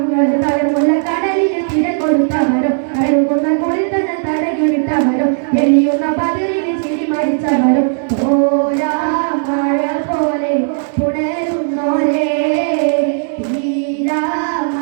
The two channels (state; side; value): silent; left; digital silence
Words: തലമുള്ള കടലിൽ തിര കൊടുത്തവരും കഴുകുന്ന കുളിൽ തന്നെ തടകിവിട്ടവരും എളിയുന്ന പതിരിന് ചിരി മരിച്ചവരും ഓരാ മഴ പോലെ പുണരുന്നോരേ തീരാ